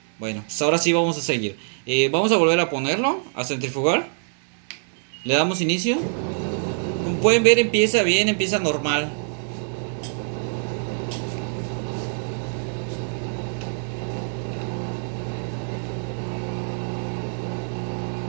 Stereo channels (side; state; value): left; silent; digital silence